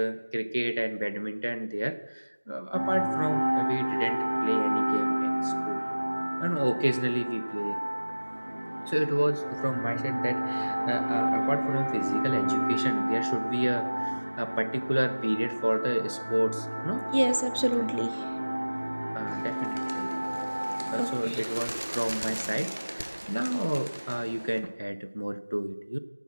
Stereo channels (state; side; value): inverted; both; correlation -1.00